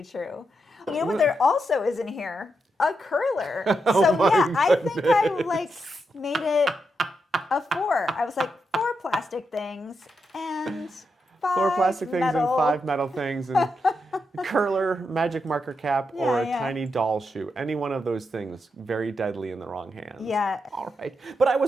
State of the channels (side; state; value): both; normal; correlation 0.84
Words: true. You know what there also is in here? A curler. I think I made it a 4. I was like 4 plastic things and 5 4 plastic things metal. and 5 metal things and curler, magic marker cap, or a tiny doll shoe. Any one of those things, very deadly in the wrong hands. Yeah. All right. But I